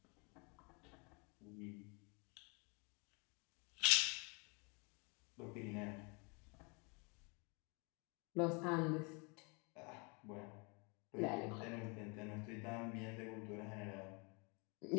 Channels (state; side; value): quieter; right; 31.9 dB